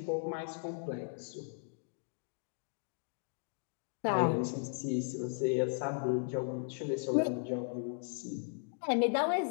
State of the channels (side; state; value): right; silent; digital silence